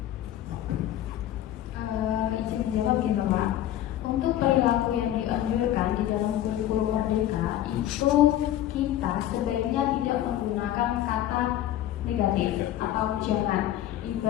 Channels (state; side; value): quieter; right; 12.6 dB